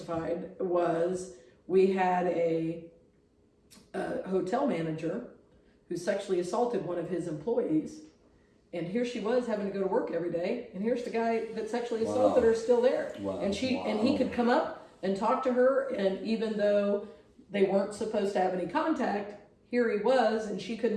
was we had a a hotel manager who sexually assaulted one of his employees. And here she was having to go to work every day, and here's the guy that sexually assaulted her still there. Wow. And he could come up and talk to her, and even though they weren't supposed to have any contact, here he was, and she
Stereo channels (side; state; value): both; identical; correlation 1.00